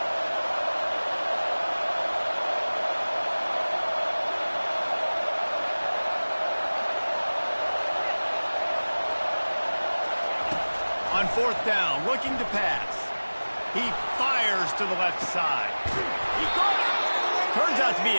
On fourth down, looking to pass. He fires to the left side. He got it. Turns out to be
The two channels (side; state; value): both; inverted; correlation -1.00